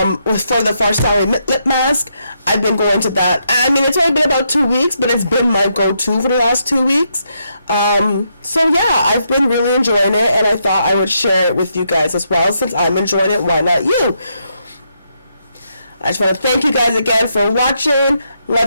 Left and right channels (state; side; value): inverted; both; correlation -0.79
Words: the Farsali lip mask, I've been going to that. I mean, it's only been about 2 weeks, but it's been my go-to for the last 2 weeks. So yeah, I've been really enjoying it, and I thought I would share it with you guys as well. Since I'm enjoying it, why not you? I just want to thank you guys again for watching.